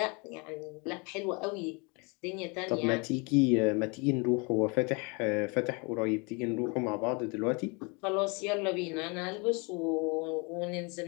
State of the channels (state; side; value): quieter; right; 30.7 dB